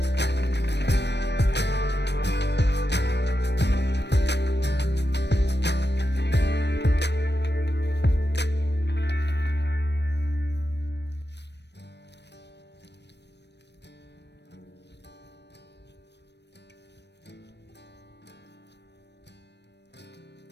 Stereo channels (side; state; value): right; late; 0.50 ms